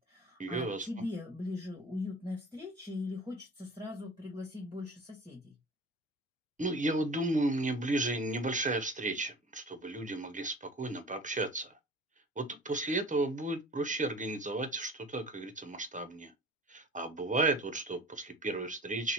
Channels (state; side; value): normal; both; correlation 0.42